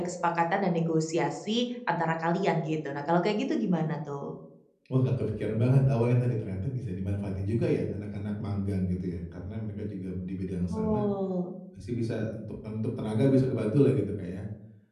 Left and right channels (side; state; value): both; identical; correlation 1.00